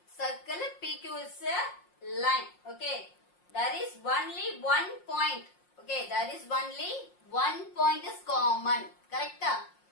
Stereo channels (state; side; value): late; right; 5.6 ms